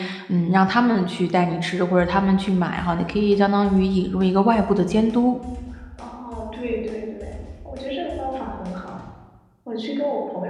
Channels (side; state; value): both; identical; correlation 1.00